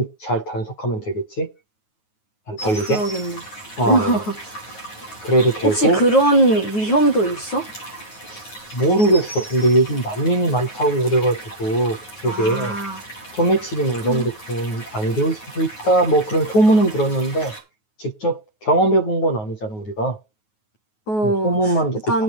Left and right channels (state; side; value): late; right; 9.4 ms